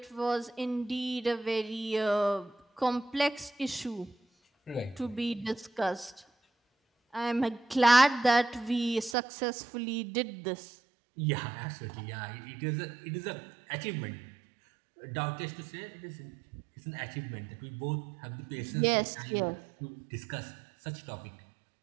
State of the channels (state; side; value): drops out; left; at 9.2 s